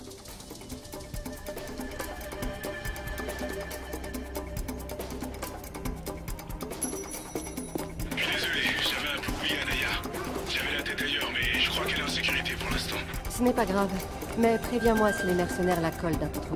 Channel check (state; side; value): identical; both; correlation 1.00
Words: Je suis désolé, j'avais un peu oublié Anaya. J'avais la tête ailleurs, mais je crois qu'elle est en sécurité pour l'instant. Ce n'est pas grave. Mais préviens-moi si les mercenaires la collent d'un peu trop